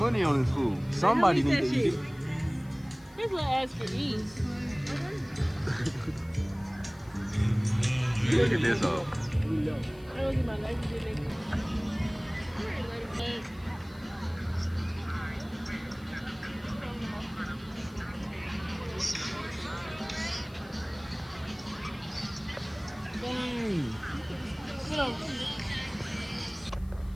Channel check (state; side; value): noise; left; hiss, 27 dB below the sound